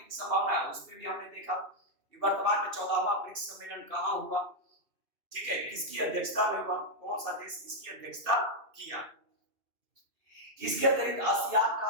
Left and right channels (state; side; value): late; left; 2.7 ms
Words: की संभावना है उस पे भी हमने देखा। वर्तमान में 14वां ब्रिक्स सम्मेलन कहाँ हुआ, ठीक है, किसकी अध्यक्षता में हुआ, कौन सा देश इसकी अध्यक्षता किया। इसके अतिरिक्त आसियान